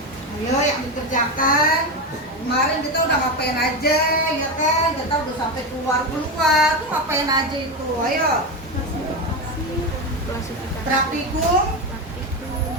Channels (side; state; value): both; normal; correlation 0.15